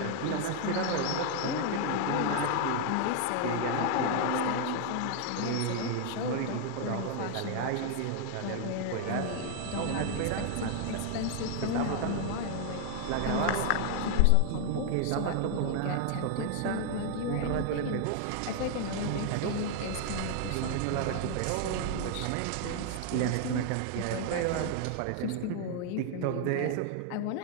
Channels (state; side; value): different; both; correlation 0.00